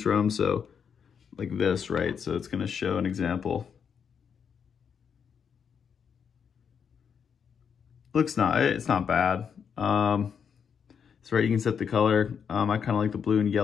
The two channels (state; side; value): quieter; right; 7.1 dB